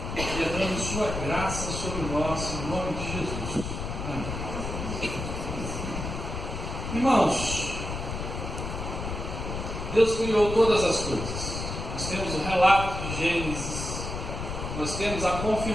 derrame sua graça sobre nós, em nome de Jesus. Amém. Irmãos, Deus criou todas as coisas. Nós temos o relato de Gênesis, nós temos a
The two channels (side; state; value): left; noise; rumble, 5 dB below the sound